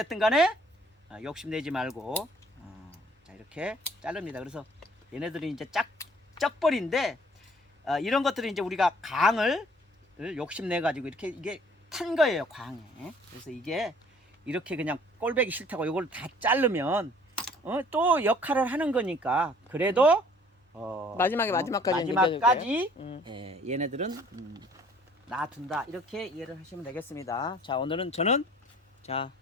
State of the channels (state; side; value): normal; both; correlation 0.56